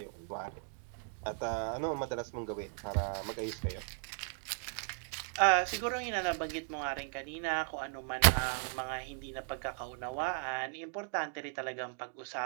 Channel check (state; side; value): silent; left; 53 dB below the other